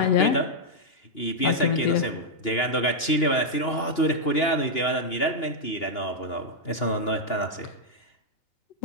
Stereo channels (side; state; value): right; late; 2.9 ms